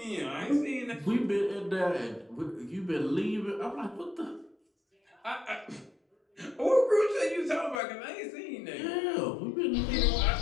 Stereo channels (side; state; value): right; drops out; at 7.8 s